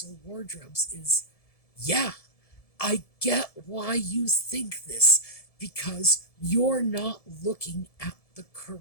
wardrobes is, yeah, I get why you think this, because you're not looking at the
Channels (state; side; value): late; right; 1.7 ms